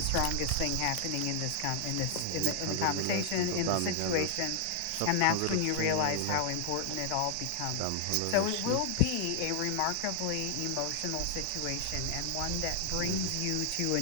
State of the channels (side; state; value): both; different; correlation 0.00